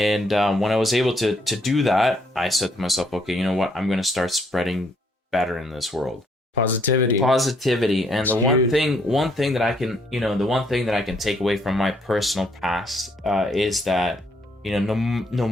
when I was able to do that, I said to myself, okay, you know what? I'm going to start spreading better in this world. Positivity. And That's the huge. one thing that I can, you know, the one thing that I can take away from my personal past is that, you know, no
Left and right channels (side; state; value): both; normal; correlation 0.69